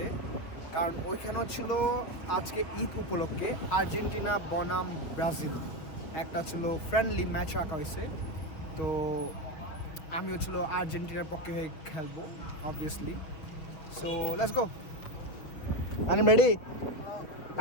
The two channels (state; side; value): late; right; 6.2 ms